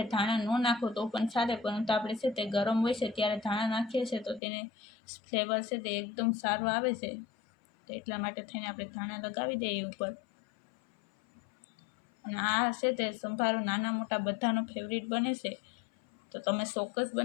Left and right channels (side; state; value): right; drops out; at 4.4 s